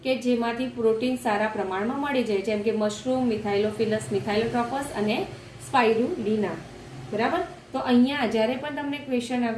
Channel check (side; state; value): both; identical; correlation 1.00